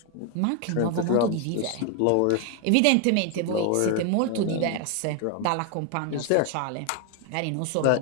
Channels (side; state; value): both; different; correlation 0.01